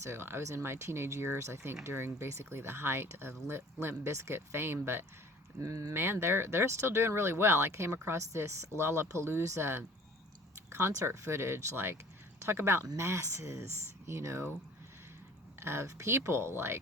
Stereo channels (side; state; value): both; normal; correlation 0.49